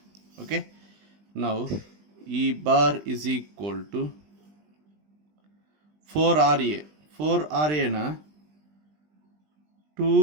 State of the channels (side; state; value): left; late; 20 ms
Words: Okay. Now E bar is equal to 4RA. 4RA na